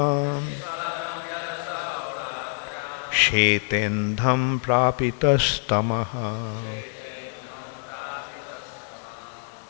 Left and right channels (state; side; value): silent; right; 61 dB below the other